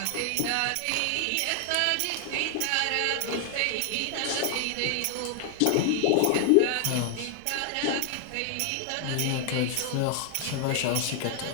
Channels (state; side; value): different; both; correlation 0.00